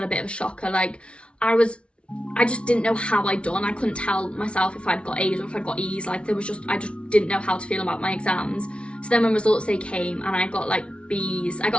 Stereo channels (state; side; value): late; right; 0.059 ms